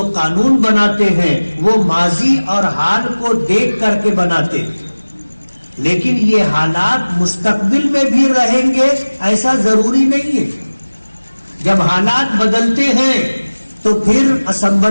قانون بناتے ہیں وہ ماضی اور حال کو دیکھ کر کے بناتے ہیں. لیکن یہ حالات مستقبل میں بھی رہیں گے ایسا ضروری نہیں ہے. جب حالات بدلتے ہیں تو پھر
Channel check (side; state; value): both; inverted; correlation -1.00